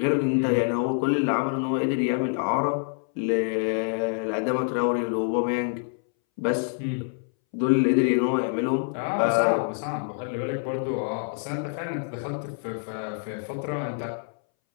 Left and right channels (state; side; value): silent; right; 61 dB below the other